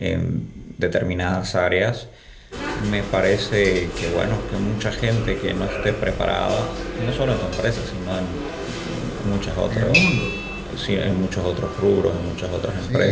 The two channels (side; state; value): both; identical; correlation 1.00